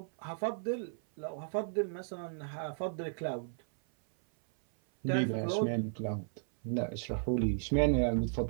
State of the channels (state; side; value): silent; left; 55 dB below the other